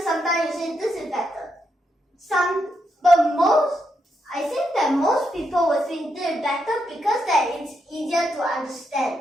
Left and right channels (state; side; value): normal; both; correlation 0.81